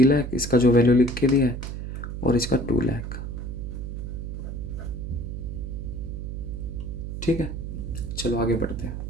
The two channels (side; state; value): right; noise; hum, 6 dB below the sound